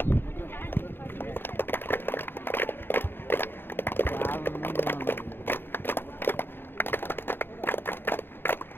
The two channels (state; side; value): late; right; 0.10 ms